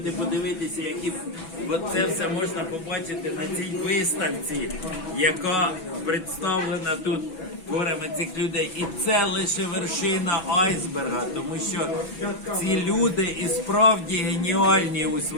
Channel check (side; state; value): right; late; 6.0 ms